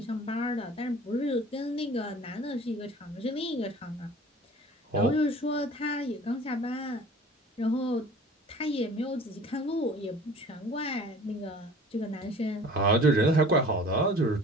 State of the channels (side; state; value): both; normal; correlation 0.46